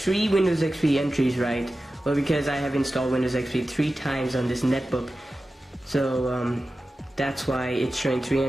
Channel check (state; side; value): normal; both; correlation 0.94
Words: Windows XP entries, right? Well, because I have installed Windows XP 3 times on this netbook, so that's why it's showing 3